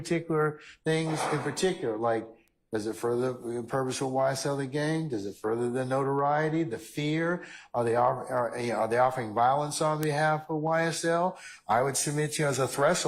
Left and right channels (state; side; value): identical; both; correlation 1.00